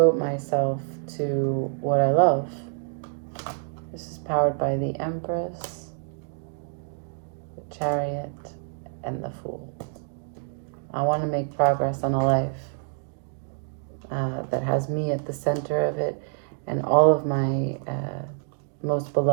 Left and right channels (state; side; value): silent; left; 60 dB below the other